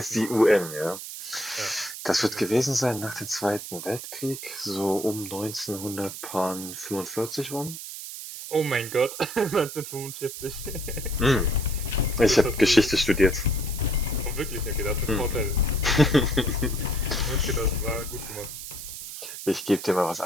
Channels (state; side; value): noise; right; hiss, 9 dB below the sound